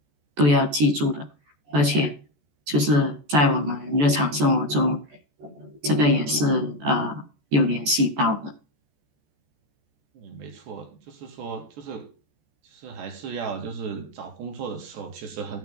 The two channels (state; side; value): late; left; 14 ms